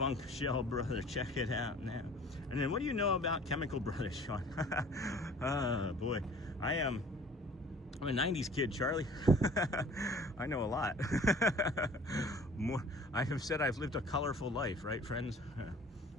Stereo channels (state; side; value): normal; both; correlation 0.49